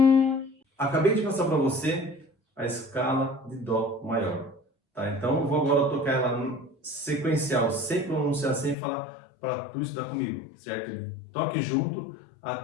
Acabei de passar para você a escala de Dó maior, tá? Então eu vou agora tocar ela sequencial, sem pronunciar, sem falar, para tu estudar comigo, certo? Toque junto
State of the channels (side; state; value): right; drops out; at 8.8 s